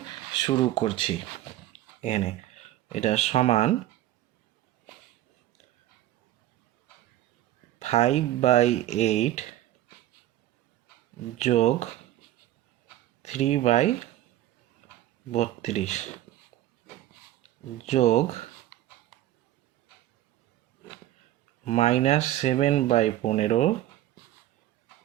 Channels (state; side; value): quieter; left; 13.8 dB